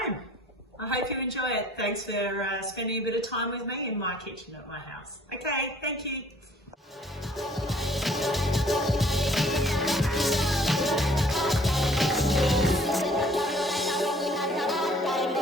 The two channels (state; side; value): normal; both; correlation 0.57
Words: I hope you enjoy it. Thanks for spending a bit of time with me in my kitchen at my house. Okay, thank you.